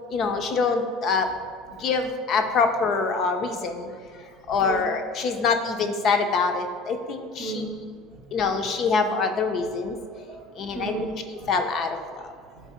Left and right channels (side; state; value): right; quieter; 3.9 dB